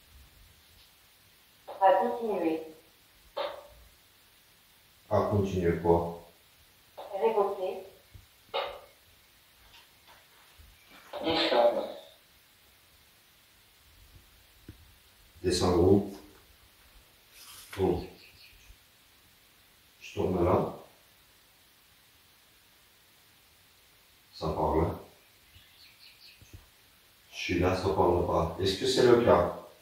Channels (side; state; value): both; identical; correlation 1.00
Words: À continuer. À continuer quoi? Révoquer. Descendre où? Oh. Je tourne là. Ça parle. Je suis là, ça parle pas. Est-ce que c'est le cas?